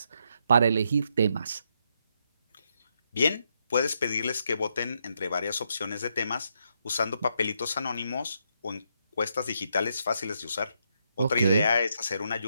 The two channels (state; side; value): inverted; both; correlation -0.78